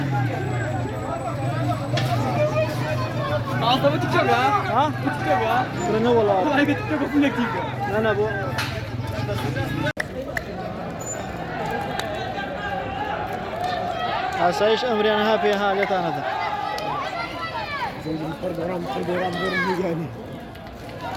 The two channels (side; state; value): both; identical; correlation 1.00